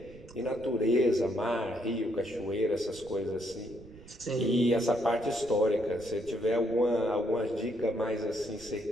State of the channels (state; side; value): noise; right; rumble, 20 dB below the sound